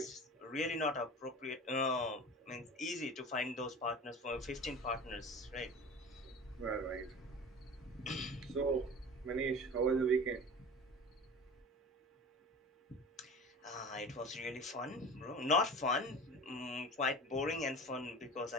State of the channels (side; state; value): both; normal; correlation 0.36